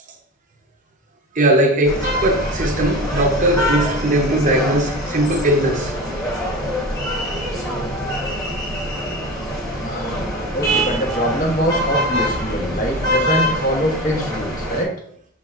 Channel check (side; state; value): both; normal; correlation 0.29